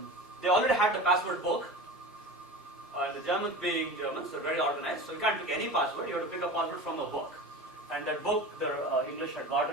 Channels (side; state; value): both; normal; correlation 0.32